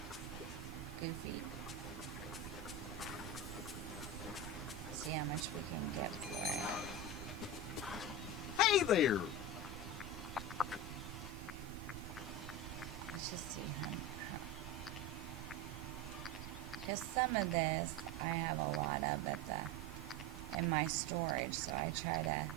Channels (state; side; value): normal; both; correlation 0.22